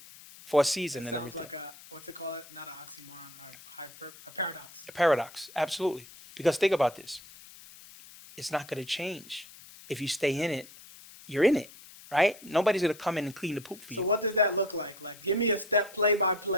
and Sounds everything. like a what they call it, not an oxymoron, a paradox. A paradox. Absolutely. Because think about this. It's not going to change. If you stay in it, you're in it, right? Nobody's going to come in and clean the poop for So you. what does that look like? Like, give me a step play by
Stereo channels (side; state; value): left; noise; hiss, 19 dB below the sound